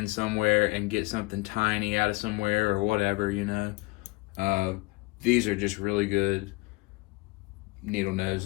somewhere and get something tiny out of somewhere or whatever, you know, these are just really good needle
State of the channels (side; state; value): right; quieter; 23.9 dB